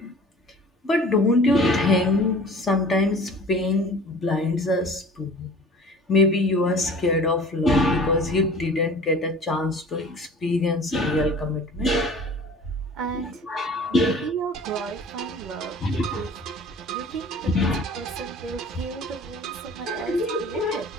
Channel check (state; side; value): normal; both; correlation 0.45